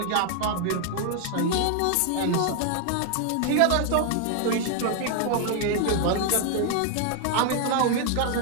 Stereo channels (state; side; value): different; both; correlation 0.00